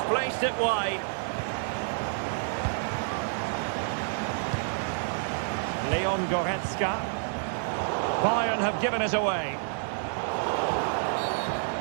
placed it wide. Leon Goretzka. Bayern have given us away.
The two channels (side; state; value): left; silent; 59 dB below the other